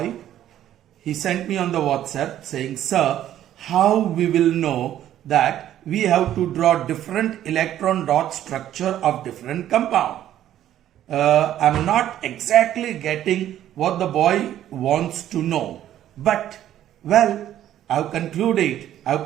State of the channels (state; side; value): quieter; left; 11.9 dB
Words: He sent me on the WhatsApp saying, sir, how we will know that we have to draw different electron dot structure of different compound. I'm not exactly getting what the boy wants to know, but well, I've concluded, I've